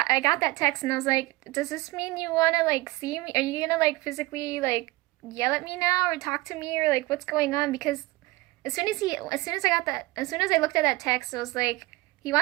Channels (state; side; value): quieter; left; 21.2 dB